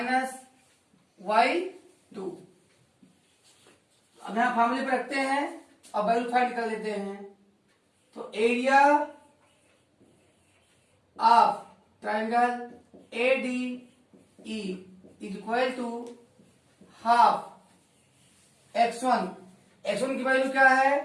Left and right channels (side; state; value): both; identical; correlation 1.00